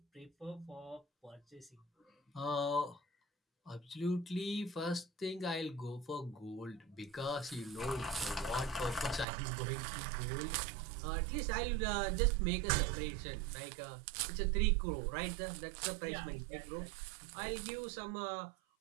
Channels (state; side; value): drops out; left; at 9.2 s